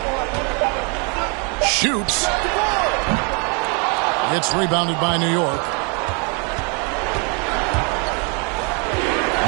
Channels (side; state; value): left; quieter; 34.9 dB